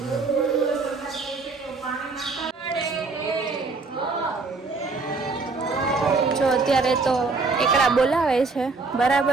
જો અત્યારે તો એકડા બોલાવે છે,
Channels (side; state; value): left; quieter; 4.0 dB